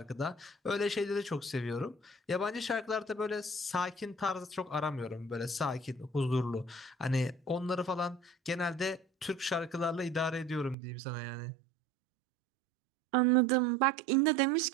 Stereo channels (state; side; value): drops out; left; at 10.8 s